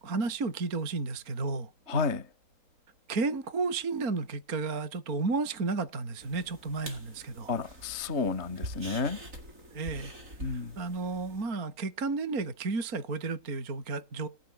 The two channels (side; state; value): left; late; 3.8 ms